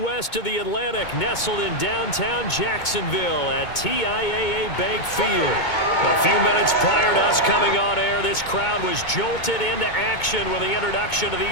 of the Atlantic, nestled in downtown Jacksonville at TIAA Bank Field. A few minutes prior to us coming on air, this crowd was jolted into action with the introduction of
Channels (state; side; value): late; right; 2.2 ms